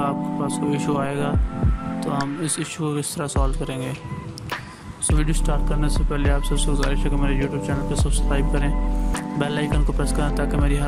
आपके पास कोई इशू आएगा तो हम इस इशू को किस तरह सॉल्व करेंगे। सो वीडियो स्टार्ट करने से पहले आप सबसे गुजारिश है कि मेरे यूट्यूब चैनल को सब्सक्राइब करें, बेल आइकन को प्रेस करें ताकि मेरी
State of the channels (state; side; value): identical; both; correlation 1.00